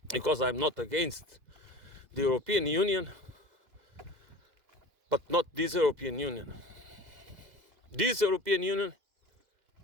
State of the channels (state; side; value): late; left; 2.0 ms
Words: because I'm not against the European Union, but not this European Union. This European Union